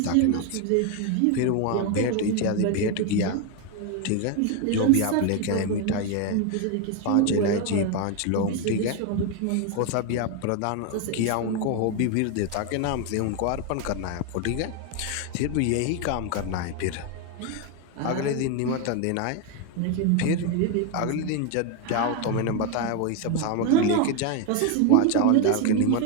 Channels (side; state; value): both; different; correlation 0.02